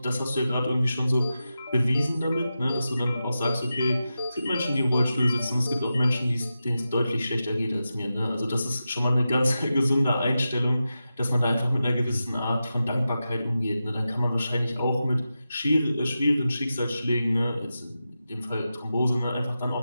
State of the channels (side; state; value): both; inverted; correlation -0.91